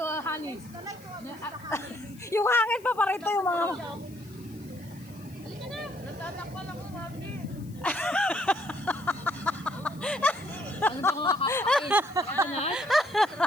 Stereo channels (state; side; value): noise; left; hiss, 24 dB below the sound